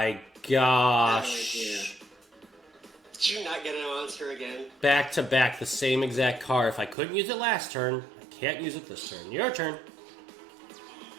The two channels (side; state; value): left; drops out; at 7.0 s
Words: gosh. Did you not get a monster again? Back to back, the same exact card. If I couldn't use it last turn, I can't use it this turn. Your turn.